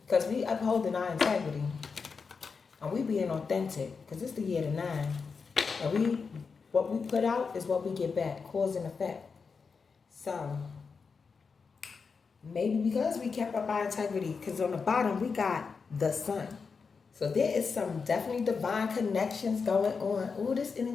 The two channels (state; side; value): quieter; right; 5.2 dB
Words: Because we upholding our integrity. And we being authentic. Because it's the year of the 9. And what we put out is what we get back. Cause and effect. So, maybe because we kept up our integrity. Because on the bottom, we got the sun. So there is some definitely divine connections going on. Ooh, this